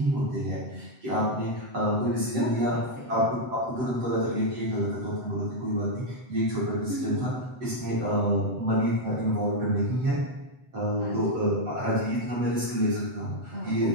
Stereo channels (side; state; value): left; late; 7.8 ms